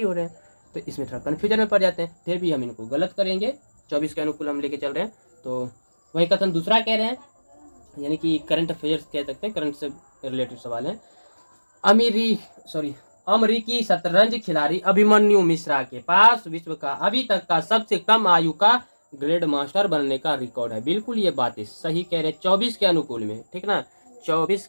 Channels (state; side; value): inverted; both; correlation -1.00